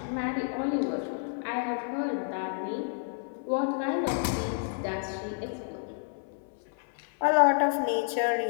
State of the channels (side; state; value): right; silent; 58 dB below the other